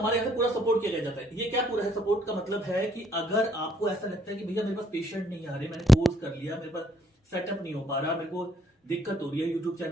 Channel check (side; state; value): both; normal; correlation 0.68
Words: यहाँ से पूरा सपोर्ट किया जाता है। ये क्या पूरा है सपोर्ट का मतलब है कि अगर आपको ऐसा लगता है कि भैया मेरे पास पेशेंट नहीं आ रहे, मैंने कोर्स कर लिया, मेरे पास सेटअप नहीं हो पा रहा, मेरे को दिक्कत हो रही है, यूट्यूब